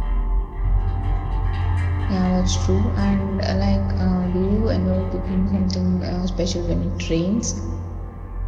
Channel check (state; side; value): identical; both; correlation 1.00